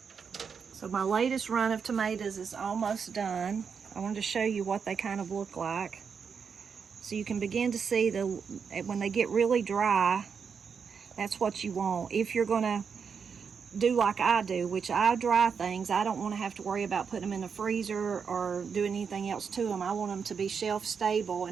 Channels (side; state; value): left; quieter; 6.3 dB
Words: So my latest run of tomatoes is almost done. I wanted to show you what they kind of look like. So you can begin to see when they get really dry, that's what you want. If you're gonna do like I do, which I dry things, I don't want to have to worry about putting them in the freezer or doing anything else to them. I want them to be shelf stable